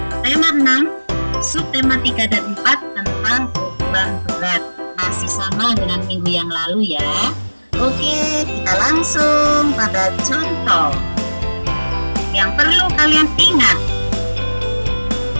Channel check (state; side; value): inverted; both; correlation -1.00